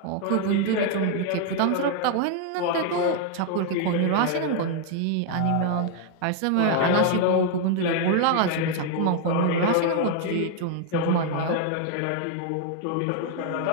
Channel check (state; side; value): different; both; correlation 0.00